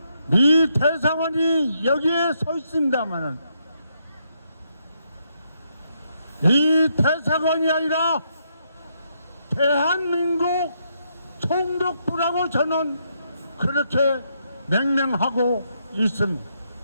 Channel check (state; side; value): inverted; both; correlation -0.77